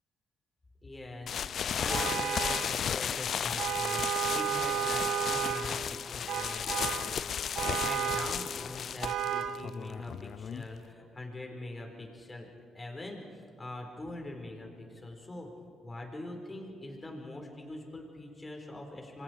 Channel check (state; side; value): normal; both; correlation 0.61